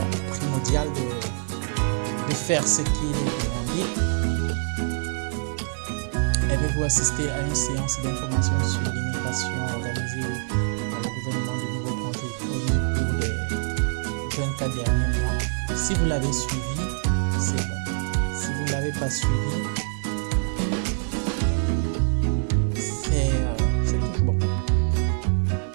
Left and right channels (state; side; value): silent; left; digital silence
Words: primordial de faire ce qui est demandé. Avez-vous assisté à une séance d'information sur l'immigration organisée Si vous l'avez suivi, c'est bon. Si vous ne l'avez pas suivi, c'est toujours bon.